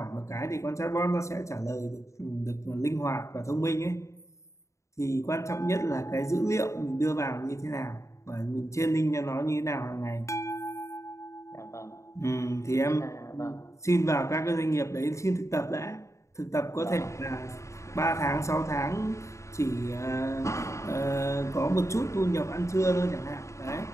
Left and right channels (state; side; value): late; right; 0.14 ms